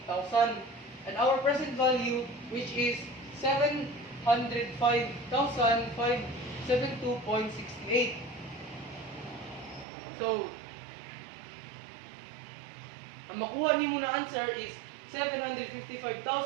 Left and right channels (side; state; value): left; drops out; at 9.9 s